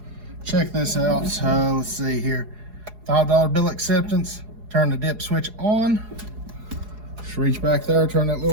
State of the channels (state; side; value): late; left; 4.8 ms